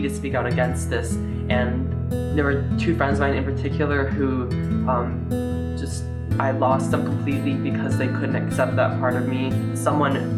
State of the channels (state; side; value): identical; both; correlation 1.00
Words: to speak out against this. And there were 2 friends of mine in particular who I lost them completely because they couldn't accept that part of me.